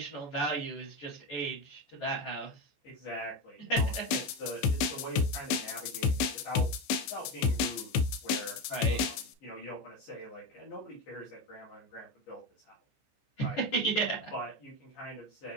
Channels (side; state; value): right; late; 15 ms